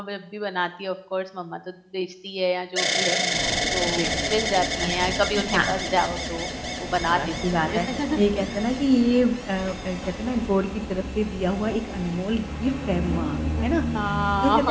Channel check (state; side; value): identical; both; correlation 1.00